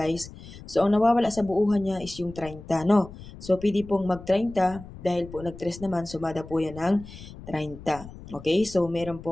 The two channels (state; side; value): noise; left; rumble, 15 dB below the sound